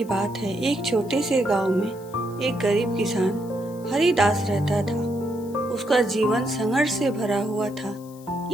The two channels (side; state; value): left; noise; hiss, 24 dB below the sound